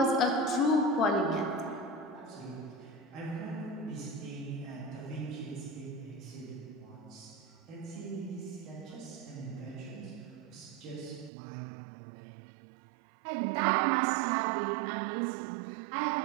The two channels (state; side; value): drops out; left; at 11.3 s